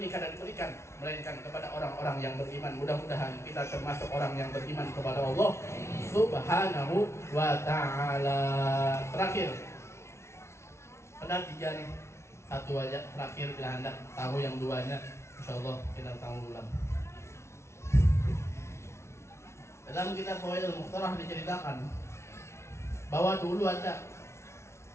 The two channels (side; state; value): right; late; 0.13 ms